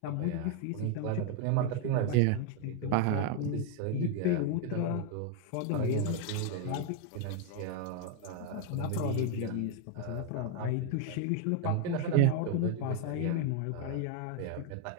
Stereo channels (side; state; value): both; different; correlation 0.01